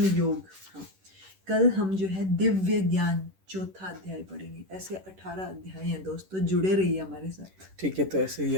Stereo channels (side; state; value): left; late; 10 ms